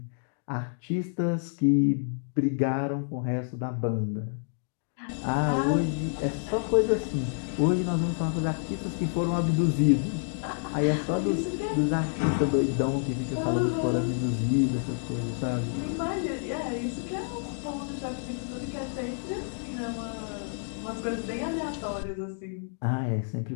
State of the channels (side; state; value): right; silent; 59 dB below the other